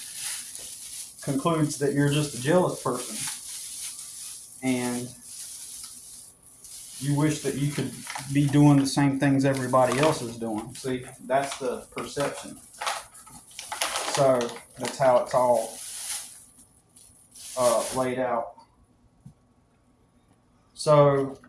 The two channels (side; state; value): both; identical; correlation 1.00